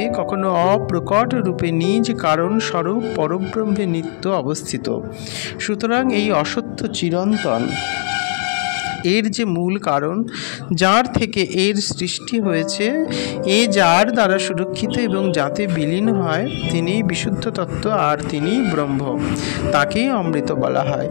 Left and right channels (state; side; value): silent; right; 60 dB below the other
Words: কখনো অপ্রকট রূপে নিজ কারণ স্বরূপ পরব্রহ্মে নিত্য অবস্থিত। সুতরাং এই অসত্য চিরন্তন, এর যে মূল কারণ, যার থেকে এর সৃষ্টি হয়েছে, এ যার দ্বারা সুরক্ষিত এবং যাতে বিলীন হয়, তিনি বিশুদ্ধ তত্ত্ব আর তিনি ব্রহ্ম। তাকেই অমৃত বলা হয়।